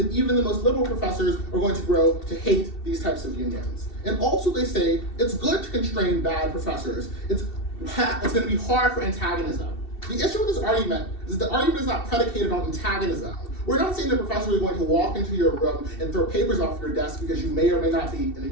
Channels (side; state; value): right; late; 2.7 ms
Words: even the most liberal professors are going to grow to hate these types of unions. And also they say it's good to constrain bad professors. It's going to be hard for antagonism. The issue with this argument is the argument is not predicated on antagonism. We're not saying the professor is going to walk into your room and throw papers off your desk because you may or may not be in a